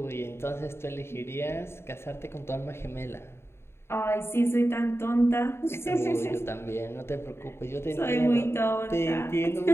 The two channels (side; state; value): right; late; 0.12 ms